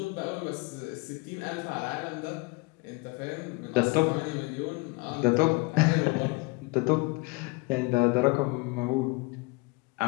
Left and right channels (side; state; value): right; quieter; 25.7 dB